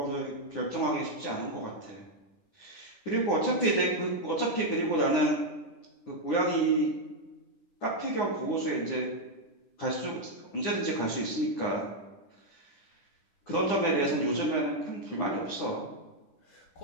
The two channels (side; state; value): right; late; 9.9 ms